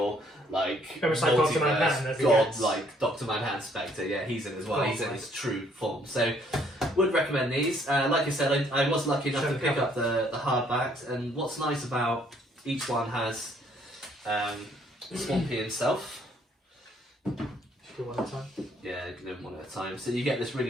like almost like Dr. Manhattan, as he god, gets. like Dr. Manhattan Spectre. Yeah, he's in as well. Oh, He's in right. his true form. So, would recommend these. Like I said, I was lucky enough Show to the pick cover. up the hardbacks, and what's nice about each one has Swampy himself. Should do one at a time. Yeah, you can do them one at a time. So you get this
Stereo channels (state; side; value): normal; both; correlation 0.65